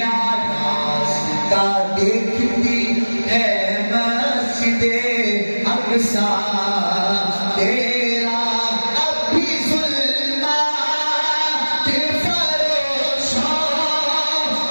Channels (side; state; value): both; inverted; correlation -1.00